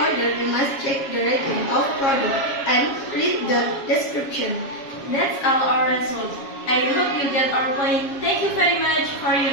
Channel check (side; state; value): right; late; 7.3 ms